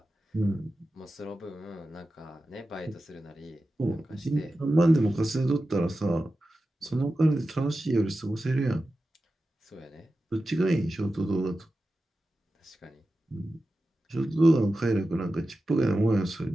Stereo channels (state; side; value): normal; both; correlation 0.93